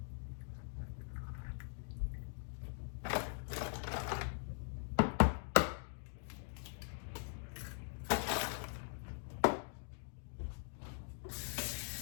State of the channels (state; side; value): silent; right; digital silence